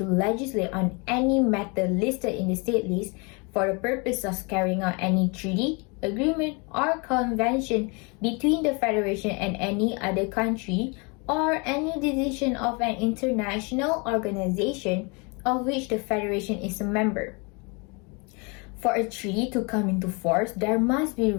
legislate on any matter listed in the state list for the purpose of carrying out any treaty, agreement, or convention between the Federation and any other country, or any decision of an international organization of which the Federation is a member. For a treaty to come into force, there must be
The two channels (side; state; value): right; quieter; 30.9 dB